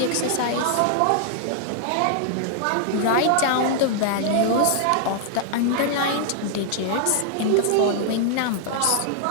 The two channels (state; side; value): different; both; correlation -0.01